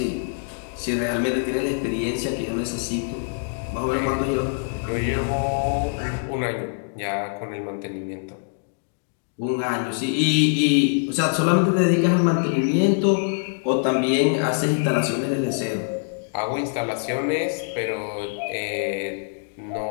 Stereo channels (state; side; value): silent; right; digital silence